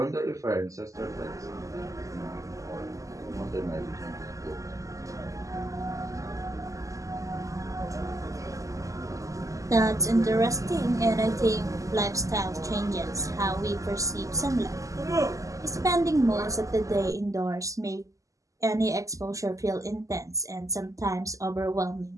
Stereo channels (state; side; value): late; left; 0.16 ms